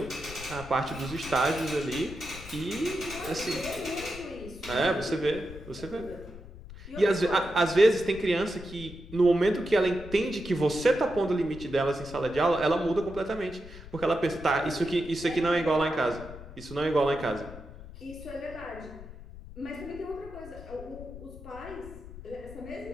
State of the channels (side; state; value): left; noise; rumble, 15 dB below the sound